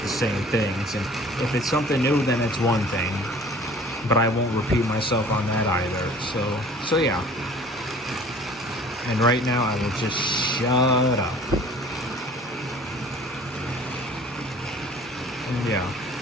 the same things. And if it's something new, then it's one thing, but I won't repeat myself on that either. So yeah. And right now I will just shut up. And yeah.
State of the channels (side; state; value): both; normal; correlation 0.48